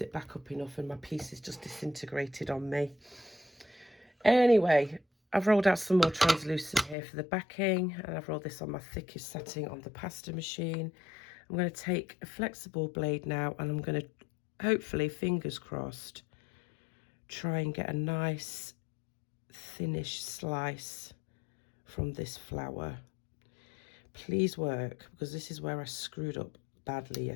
it back up enough and my pieces just disintegrated on me. Anyway, I've rolled out some more translucent here for the backing, and I've rolled this on my thickest setting on the pasta machine. I'm going to take a flexible blade now, and I'm going to, hopefully, fingers crossed, try and get a nice thinnish slice from this flower. Please work, because this is where I screwed up badly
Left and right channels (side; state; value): right; drops out; at 7.0 s